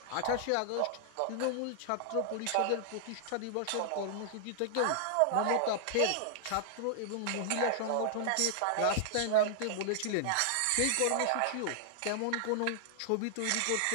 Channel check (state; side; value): different; both; correlation -0.01